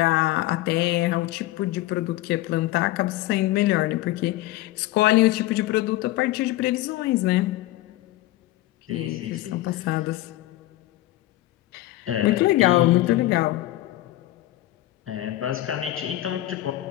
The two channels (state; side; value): quieter; right; 16.2 dB